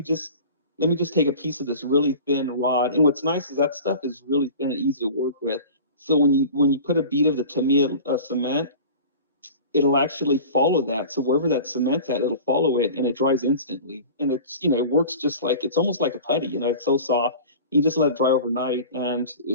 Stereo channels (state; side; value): inverted; both; correlation -0.38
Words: just take a piece of this really thin rod. And what's nice is that stuff is really thin and easy to work with. So when you put a bead of the Tamiya cement, it'll actually follow that. So wherever that cement's at, it'll follow it and it dries instantly. And it works just like it's almost like a putty. It's so soft. You just let it dry overnight and